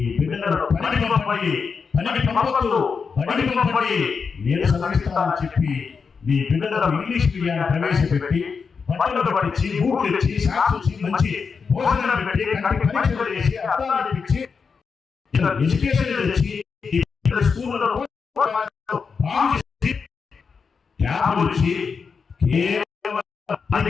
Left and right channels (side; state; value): right; quieter; 5.5 dB